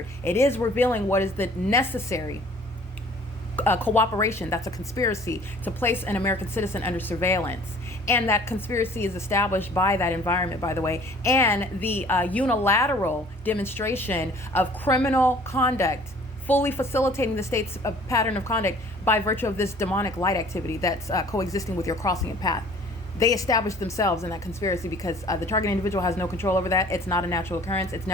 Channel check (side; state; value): both; normal; correlation 0.52